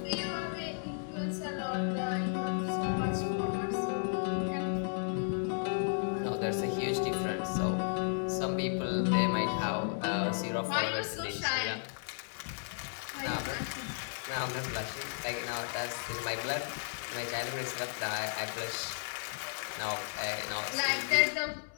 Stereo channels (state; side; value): silent; right; digital silence